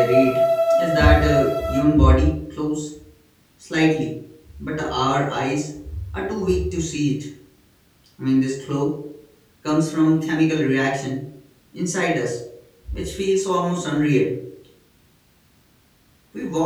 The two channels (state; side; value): identical; both; correlation 1.00